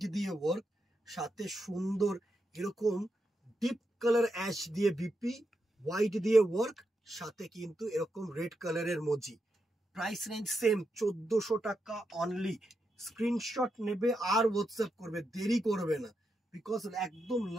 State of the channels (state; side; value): normal; both; correlation 0.85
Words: দিয়ে ওয়ার্ক, সাথে সুন্দর এরকম ডিপ কালার অ্যাশ দিয়ে বিপি, হোয়াইট দিয়ে ওয়ার্ক, সাথে কিন্তু এরকম রেড কালারের মজি। প্রাইস রেঞ্জ সেম 1400 টাকা অনলি। স্ক্রিনশট নেবে আর হোয়াটসঅ্যাপ করবে, দেরি করবে না, বিকজ একদম